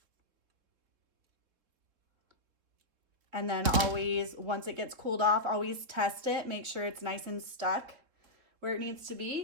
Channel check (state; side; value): late; left; 3.6 ms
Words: And then always, once it gets cooled off, always test it. Make sure it's nice and stuck where it needs to